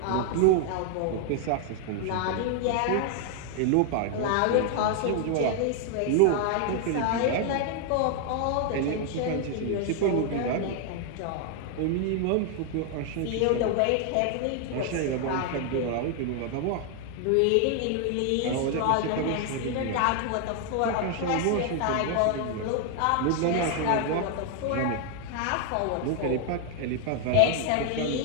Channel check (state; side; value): different; both; correlation 0.00